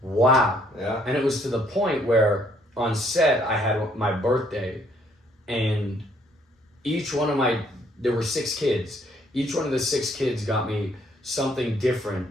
"Wow." Yeah. And it was to the point where on set I had my birthday, and there were 6 kids. Each one of the 6 kids got me something different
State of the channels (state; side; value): normal; both; correlation 0.66